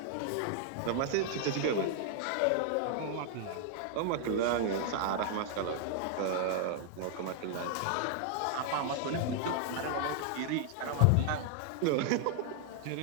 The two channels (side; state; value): both; different; correlation 0.00